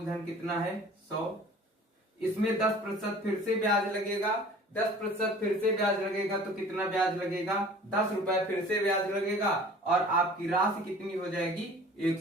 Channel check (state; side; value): normal; both; correlation 0.46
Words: कितना है, 100, इसमें 10% फिर से ब्याज लगेगा, 10% फिर से ब्याज लगेगा, तो कितना ब्याज लगेगा, 10 रुपए फिर से ब्याज लगेगा, और आपकी राशि कितनी हो जाएगी,